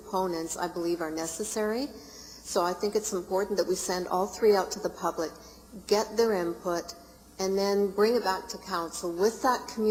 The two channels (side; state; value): both; identical; correlation 1.00